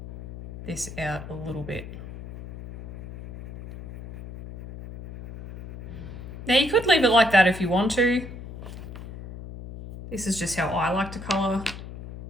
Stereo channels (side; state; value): left; noise; hum, 12 dB below the sound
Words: this out a little bit. Now you could leave it like that if you want to. This is just how I like to colour